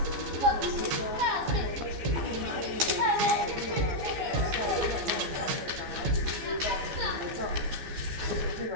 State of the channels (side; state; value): left; late; 15 ms